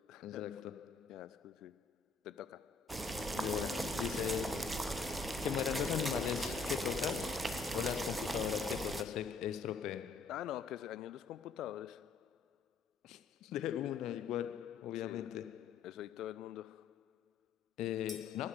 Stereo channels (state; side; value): quieter; right; 4.3 dB